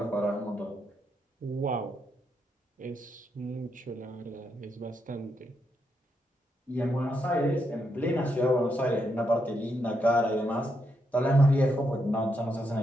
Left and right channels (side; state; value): both; normal; correlation 0.80